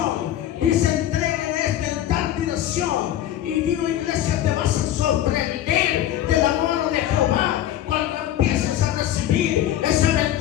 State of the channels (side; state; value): right; quieter; 12.1 dB